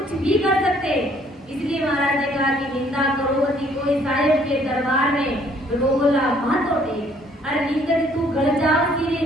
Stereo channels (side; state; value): both; normal; correlation 0.62